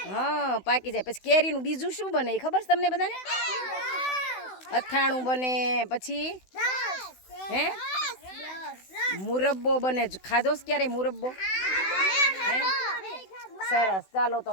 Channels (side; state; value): right; late; 16 ms